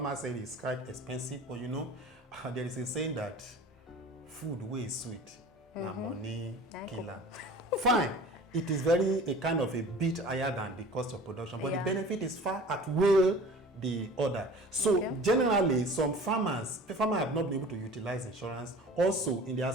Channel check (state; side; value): normal; both; correlation 0.42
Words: say it's quite expensive. But you know, there is a saying that food wey is sweet, na money killer. Fine, it is a kind of a bit higher than the cost of production, but the benefit is far outweigh the other. So generally, some farmers have not been able to utilize insurance. Also, in the